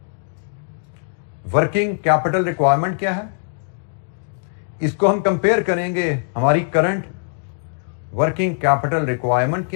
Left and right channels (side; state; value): right; silent; digital silence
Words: वर्किंग कैपिटल रिक्वायरमेंट क्या है, इसको हम कंपेयर करेंगे हमारी करंट वर्किंग कैपिटल रिक्वायरमेंट